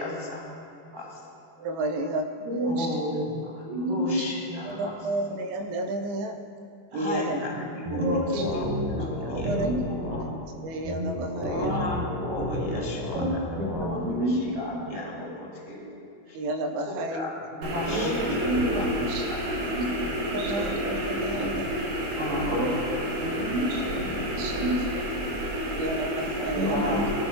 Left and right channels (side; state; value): left; late; 25 ms